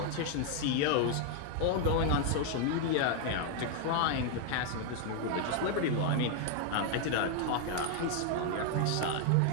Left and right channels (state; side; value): different; both; correlation 0.00